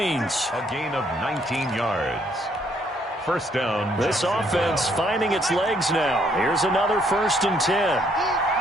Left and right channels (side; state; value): both; normal; correlation 0.68